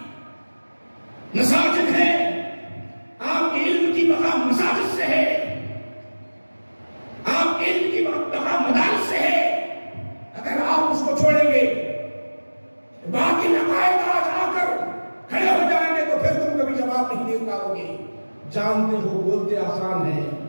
مساجد ہے, آپ کے علم کی بقا مساجد سے ہے, آپ کے علم کی بقا مدارس سے ہے. اگر آپ اس کو چھوڑیں گے, باقی عقائد آج آ کر کھڑے ہو جائیں گے تو پھر تم کبھی جواب نہیں دے پاؤ گے. جانتے ہو بولتے آسان ہے,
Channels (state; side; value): inverted; both; correlation -1.00